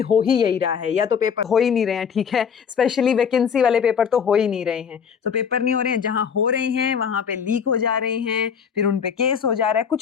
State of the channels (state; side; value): quieter; right; 7.0 dB